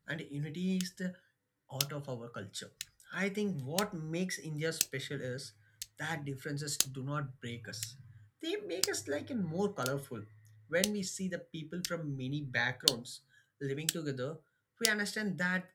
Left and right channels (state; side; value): identical; both; correlation 1.00